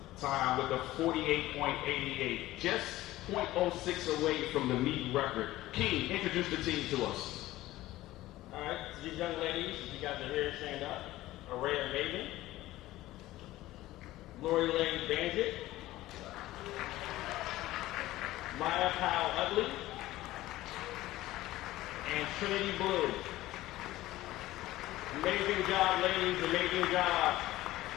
time with a 48.88. Just 0.06 away from the meet record. King, introduce the team to us. All right, so these young ladies, if you guys are here, stand up. Araya Maven, Lori Lane Bandit, Maya Powell Utley, and Trinity Blue. Amazing job, ladies, amazing job.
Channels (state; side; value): quieter; right; 16.4 dB